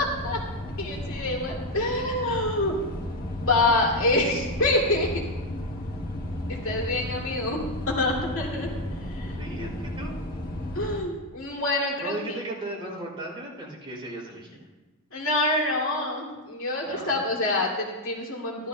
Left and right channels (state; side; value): normal; both; correlation 0.05